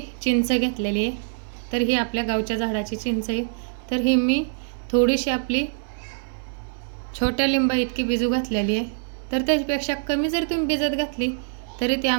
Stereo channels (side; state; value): left; silent; digital silence